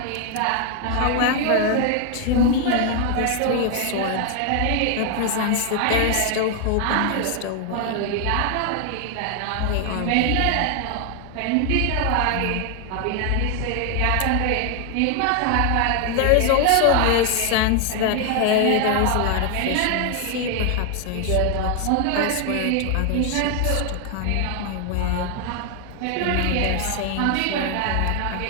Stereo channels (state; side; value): different; both; correlation 0.00